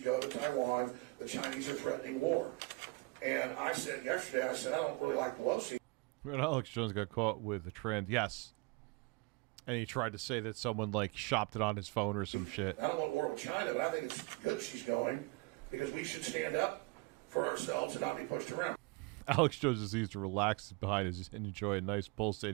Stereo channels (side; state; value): left; quieter; 25.5 dB